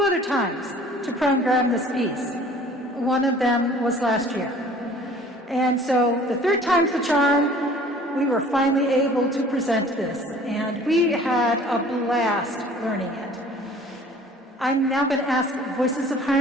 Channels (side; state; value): both; normal; correlation 0.50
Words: other times to program this piece. One of them was last year. And so the 3rd time's the charm. We were finally able to present this, and we had a blast learning it. I'm now going to ask Voices of